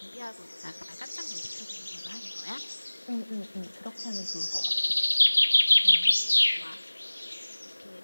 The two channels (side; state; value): both; inverted; correlation -1.00